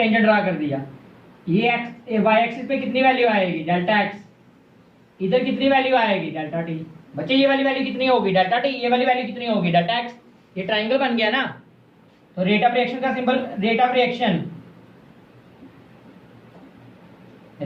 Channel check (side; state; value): both; identical; correlation 1.00